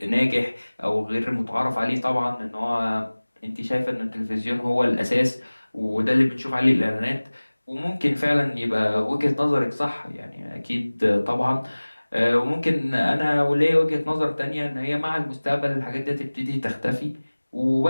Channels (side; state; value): both; inverted; correlation -1.00